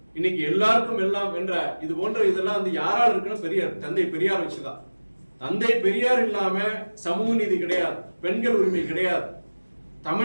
இன்னைக்கு எல்லாருக்கும் எல்லாம் என்ற இது போன்ற இதெல்லாம் யாரால் இருக்குன்னு பெரியார், தந்தை பெரியார் வச்சுதான். தந்தை பெரியார் இல்லாம சமூக நீதி கிடையாது, பெண்கள் உரிமை கிடையாது.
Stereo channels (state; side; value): inverted; both; correlation -1.00